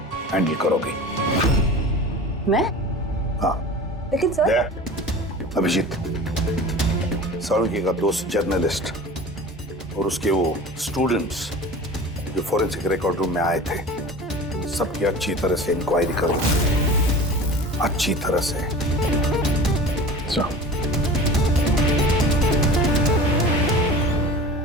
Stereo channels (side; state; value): both; normal; correlation 0.37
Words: हैंडल करोगी। मैं? हाँ। लेकिन सर। अभिजीत, साळुंखे का दोस्त जर्नलिस्ट और उसके वो स्टूडेंट्स जो फॉरेंसिक रिकॉर्ड रूम में आए थे, सबकी अच्छी तरह से इंक्वायरी करो, अच्छी तरह से।